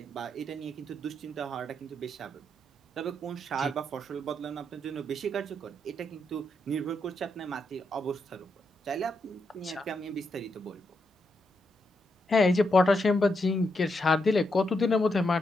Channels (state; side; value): normal; both; correlation 0.81